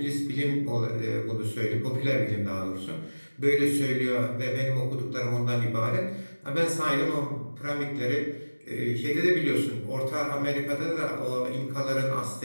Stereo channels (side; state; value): both; inverted; correlation -1.00